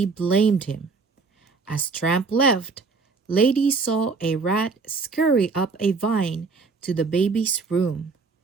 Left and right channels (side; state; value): left; quieter; 4.5 dB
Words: blamed him. As Tramp left, Lady saw a rat scurry up a vine to the baby's room.